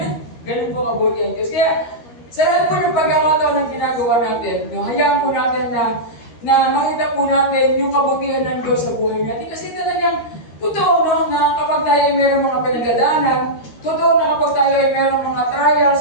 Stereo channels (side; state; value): right; late; 13 ms